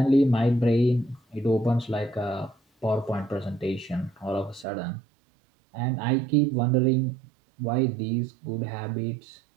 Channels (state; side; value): drops out; left; at 4.7 s